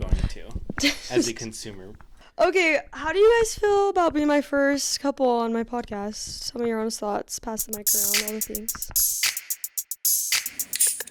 to as a consumer. Okay, how do you guys feel about being my first couple on my podcast? Tell me your honest thoughts. Pass the mic around, all the things.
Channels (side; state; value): both; identical; correlation 1.00